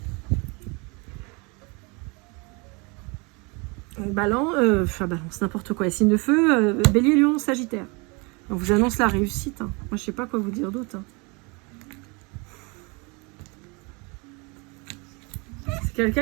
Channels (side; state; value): left; quieter; 29.4 dB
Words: Balance, n'importe quoi. Signe de feu, Bélier, Lion, Sagittaire. On vous annonce la réussite. Hein. Moi je sais pas quoi vous dire d'autre. Hein. C'est